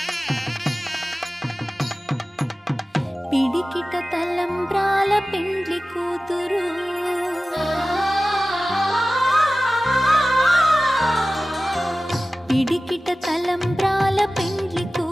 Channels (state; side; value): normal; both; correlation 0.96